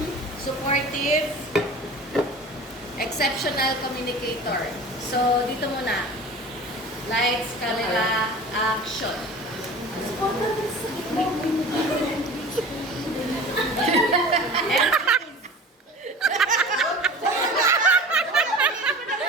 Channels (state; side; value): normal; both; correlation 0.38